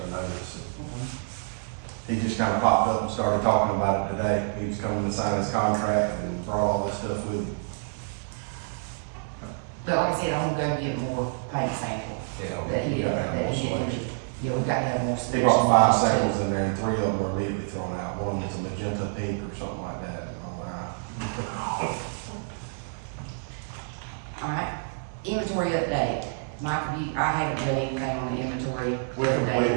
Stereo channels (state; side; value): silent; left; digital silence